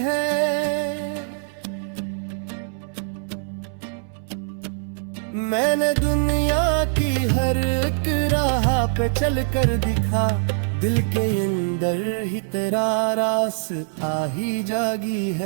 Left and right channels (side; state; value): left; silent; 63 dB below the other